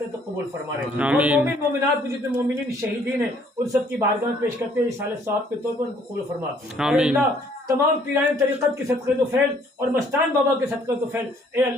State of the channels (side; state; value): both; normal; correlation 0.62